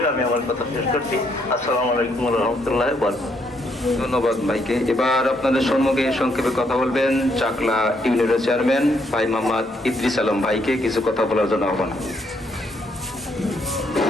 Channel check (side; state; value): both; normal; correlation 0.73